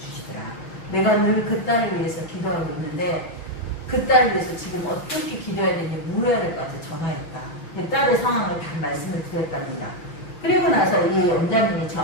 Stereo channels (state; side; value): late; right; 6.0 ms